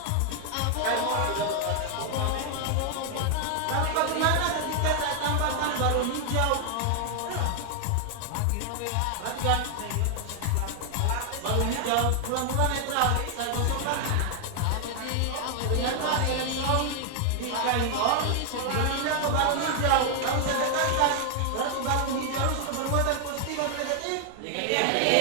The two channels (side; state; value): both; different; correlation 0.00